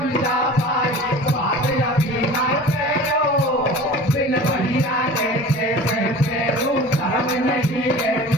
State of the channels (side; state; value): both; normal; correlation 0.39